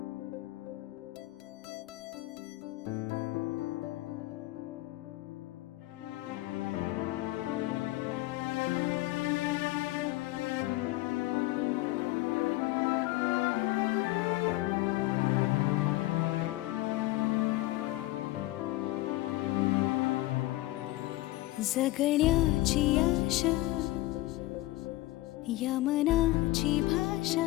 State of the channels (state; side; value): quieter; right; 18.2 dB